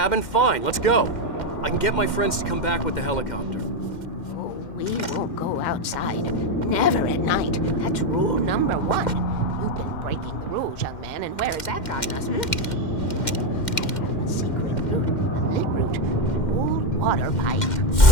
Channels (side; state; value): right; late; 2.1 ms